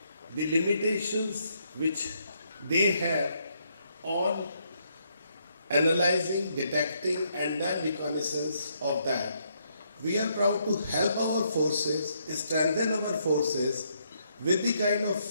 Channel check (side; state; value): both; inverted; correlation -0.74